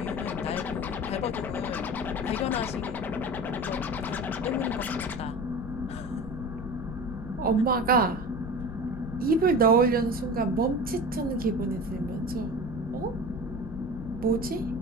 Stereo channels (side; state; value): left; noise; rumble, 10 dB below the sound